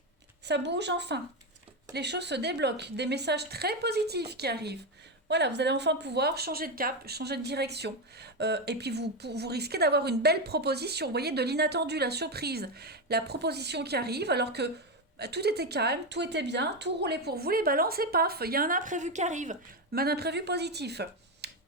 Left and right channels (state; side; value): normal; both; correlation 0.10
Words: ça bouge enfin. Les choses se débloquent, des messages très positifs qui arrivent. Voilà, vous allez enfin pouvoir changer de cap, changer de direction. Et puis vous risquez d'avoir une belle proposition, vous voyez, de l'inattendu, la surprise. La proposition qui arrive alors que tout était calme, tout était bien, tout roulait pour vous, les balances, et paf, il y a un imprévu qui arrive, mais un imprévu positif.